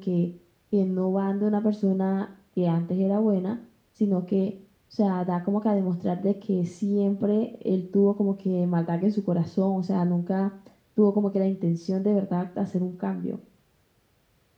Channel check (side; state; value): both; identical; correlation 1.00